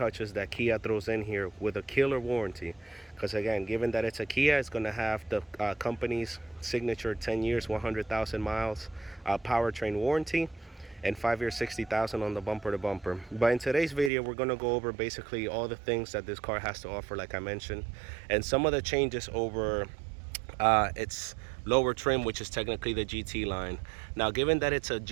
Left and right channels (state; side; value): drops out; left; at 14.1 s